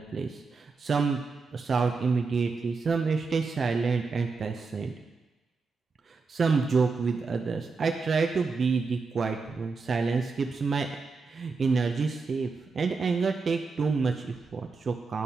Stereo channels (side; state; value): left; quieter; 4.5 dB